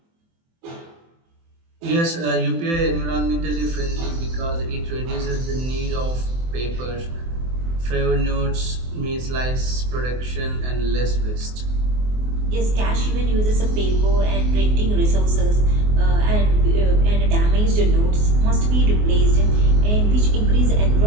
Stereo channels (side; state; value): left; late; 24 ms